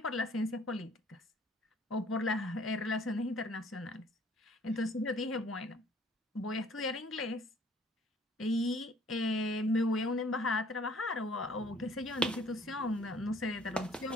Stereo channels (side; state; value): both; normal; correlation 0.57